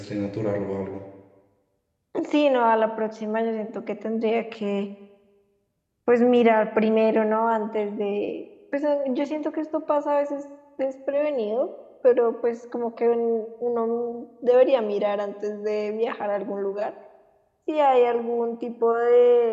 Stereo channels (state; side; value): identical; both; correlation 1.00